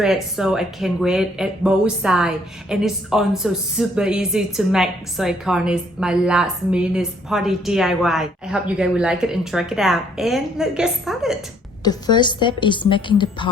so I can wear it at both sides, and it's also super easy to make, so I call it my last minute party DIY. I hope you guys will like it and try it out, and let's get started. The first step is making the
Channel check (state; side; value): normal; both; correlation 0.65